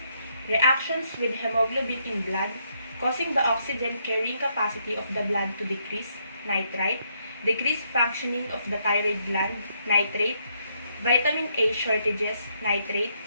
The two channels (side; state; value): both; inverted; correlation -0.74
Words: Reactions with hemoglobin in blood, causing the oxygen carrying capacity of the blood to decrease, nitrite, decreased functioning of the thyroid gland, nitrate, vitamin A shortages, nitrate,